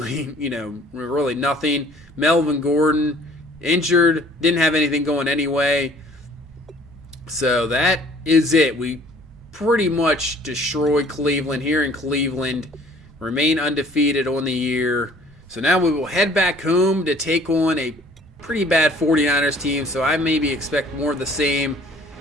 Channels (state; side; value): normal; both; correlation 0.55